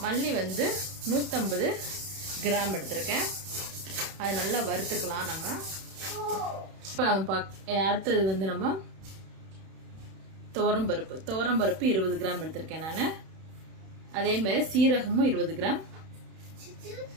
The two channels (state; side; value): late; left; 31 ms